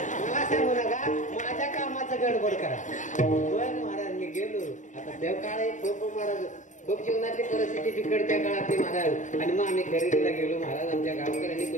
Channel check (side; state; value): right; late; 0.36 ms